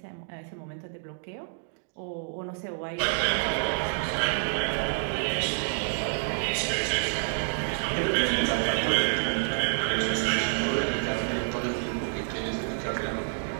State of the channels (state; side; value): silent; left; digital silence